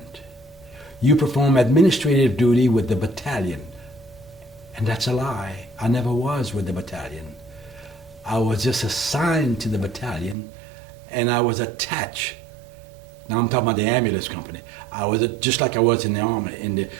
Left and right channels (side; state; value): left; drops out; at 10.4 s